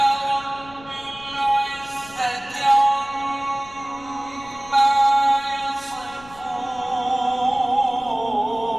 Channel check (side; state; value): left; noise; rumble, 23 dB below the sound